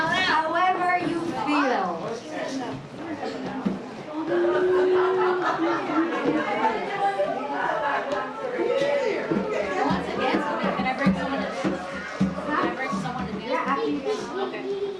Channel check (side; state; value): both; identical; correlation 1.00